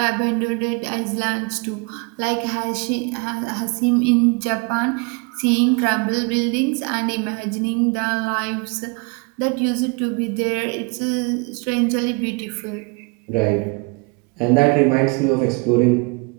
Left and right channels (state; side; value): quieter; left; 31.0 dB